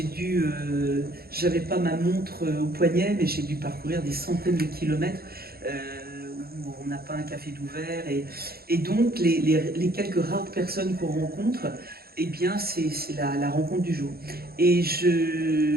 J'avais pas ma montre au poignet, mais j'ai dû parcourir des centaines de kilomètres où on n'a pas un café d'ouvert. Et donc les quelques rares personnes qu'on rencontre, eh bien c'est la rencontre du jour. Et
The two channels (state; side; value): late; left; 0.45 ms